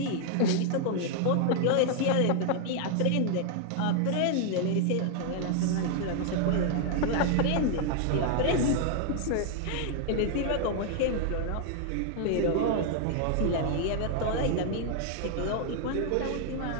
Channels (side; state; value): both; different; correlation 0.00